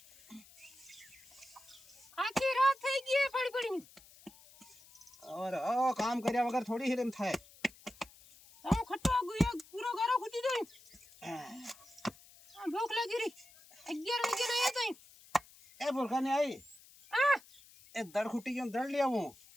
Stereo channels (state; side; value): noise; left; hiss, 23 dB below the sound